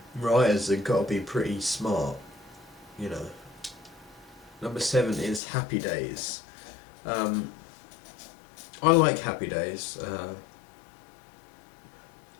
writers have got to be pretty smart. Number 7 is Happy Days. I like Happy Days.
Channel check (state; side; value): drops out; right; at 5.4 s